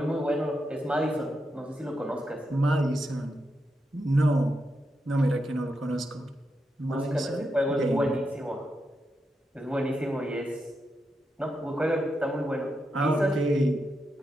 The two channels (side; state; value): both; normal; correlation 0.85